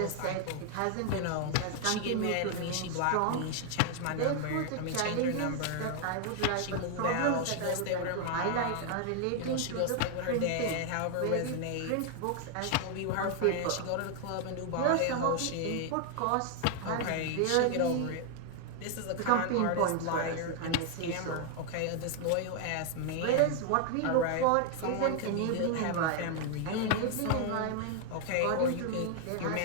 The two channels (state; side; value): different; both; correlation 0.00